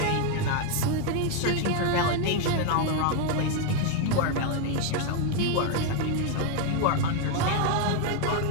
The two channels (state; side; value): different; both; correlation 0.01